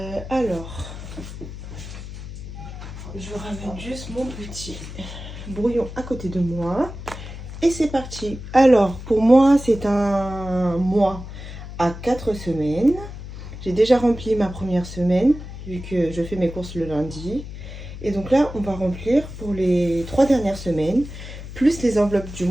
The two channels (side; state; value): left; noise; hum, 11 dB below the sound